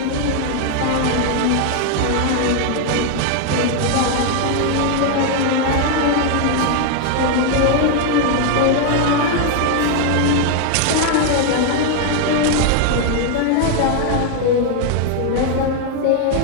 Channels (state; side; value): different; both; correlation 0.00